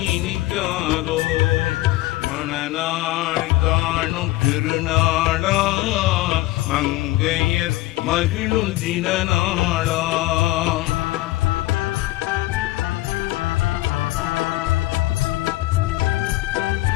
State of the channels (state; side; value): quieter; right; 17.8 dB